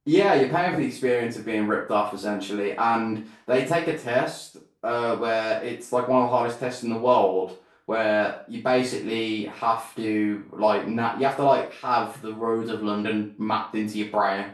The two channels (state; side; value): identical; both; correlation 1.00